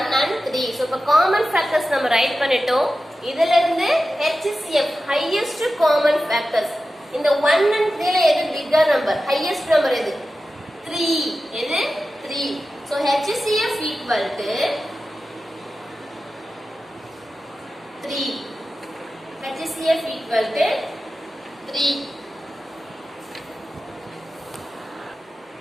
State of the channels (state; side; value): normal; both; correlation 0.93